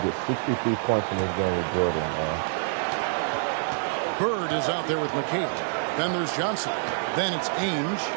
63 points in this game with Jordan, man. Bird is out there with McHale. Then there's Johnson. Then it's Ainge,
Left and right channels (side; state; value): left; silent; digital silence